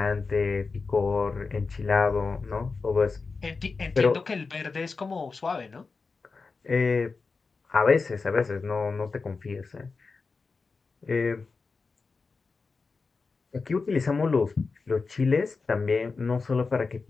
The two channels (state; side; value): quieter; right; 4.4 dB